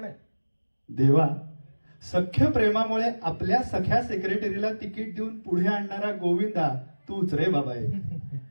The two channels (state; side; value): inverted; both; correlation -1.00